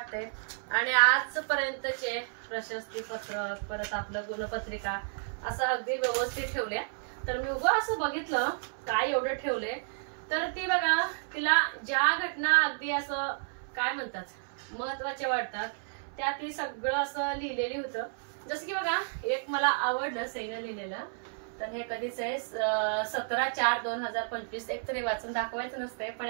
आणि आजपर्यंतचे प्रशस्ती पत्रक परत आपलं गुणपत्रिका असं अगदी व्यवस्थित ठेवले. तर मी उगा असं बघितलं काय एवढं ठेवलंय. तर ती बघा, तिला ज्या घटना अगदी असं काय म्हणतात महत्वाच्या वाटतात त्या ती सगळं असं लिहिलेली होतं. जसं की बघा, एक मला आवडलं सईनं लिहिलेलं. तर हे कधीच आहे 17/4/2025. एकतरी वाचून दाखवायचं नसते, पण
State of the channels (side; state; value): left; silent; 57 dB below the other